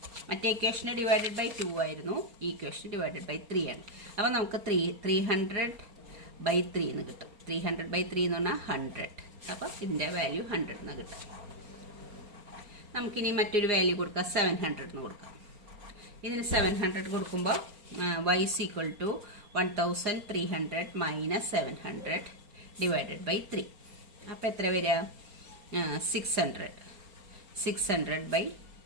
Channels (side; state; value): left; late; 4.3 ms